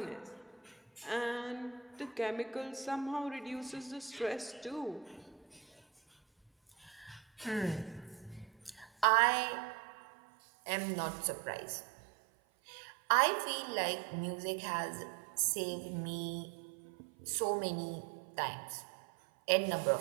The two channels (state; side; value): drops out; left; at 9.1 s